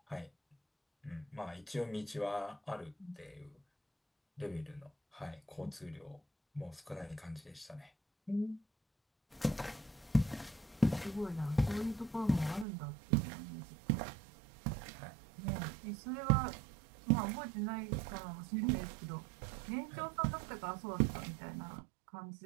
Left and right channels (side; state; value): left; drops out; at 12.7 s